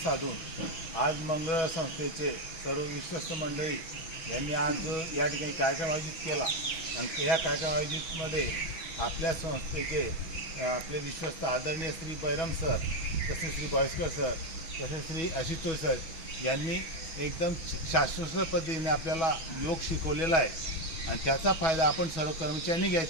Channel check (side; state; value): right; late; 6.1 ms